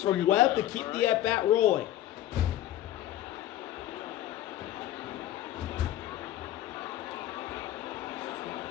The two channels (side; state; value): right; quieter; 13.3 dB